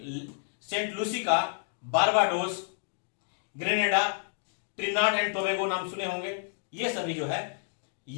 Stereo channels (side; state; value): right; silent; digital silence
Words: Saint Lucia, Barbados, Grenada, Trinidad and Tobago नाम सुने होंगे। ये सभी जो है